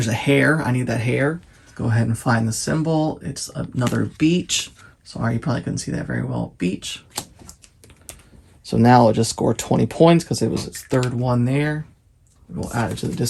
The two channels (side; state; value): both; identical; correlation 1.00